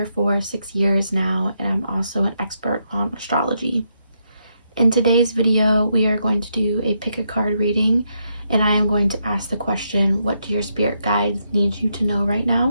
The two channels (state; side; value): inverted; both; correlation -0.80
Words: for 6 years now, and I'm also an expert on astrology. In today's video, we are going to do a pick a card reading, and I am going to ask the question, what do your spirit guides need you to know right now?